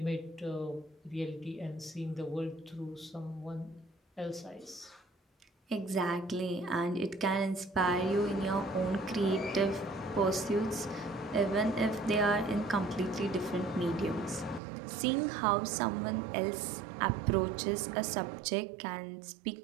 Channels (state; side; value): drops out; left; at 14.6 s